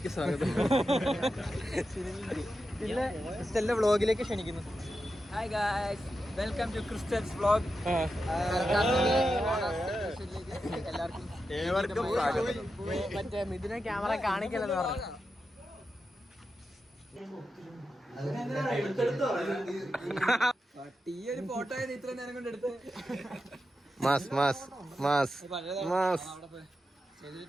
സ്വാഗതം. ക്രിസ്റ്റലിന്റെ വ്ളോഗിലേക്ക് ക്ഷണിക്കുന്നു. Hi guys, welcome to Crystal's vlog. എല്ലാവർക്കും മറ്റേ മിഥുനെ ക്യാമറ കാണിക്കലെന്ന് പറഞ്ഞു. ഈ ഒരു ഫോട്ടോ ഇത്ര നേരം കൊണ്ട് എടുത്ത്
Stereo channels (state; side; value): normal; both; correlation 0.89